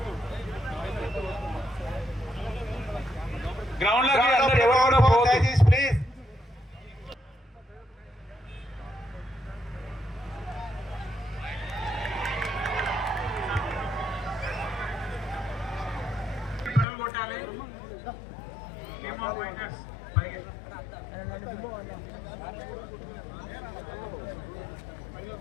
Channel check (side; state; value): right; drops out; at 16.9 s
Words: గ్రౌండ్ లోకి అందరూ ఎవరు కూడా పోవద్దు ప్లీజ్. పరుగులు కొట్టాలి. Team of fighters